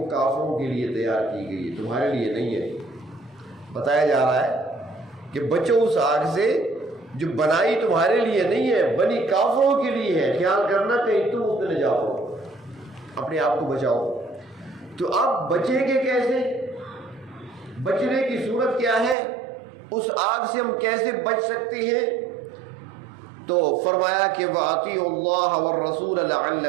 کافروں کے لیے تیار کی گئی ہے، تمہارے لیے نہیں ہے۔ بتایا جا رہا ہے کہ بچو اس آگ سے جو بنائی تمہارے لیے نہیں ہے، بنی کافروں کے لیے ہے۔ خیال کرنا کہیں تم اس میں نہ جاؤ، اپنے آپ کو بچاؤ۔ تو آپ بچیں گے کیسے؟ بچنے کی صورت کیا ہے؟ اس آگ سے ہم کیسے بچ سکتے ہیں؟ تو فرمایا کہ وَأَطِيعُوا اللَّهَ وَالرَّسُولَ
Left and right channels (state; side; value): drops out; left; at 19.2 s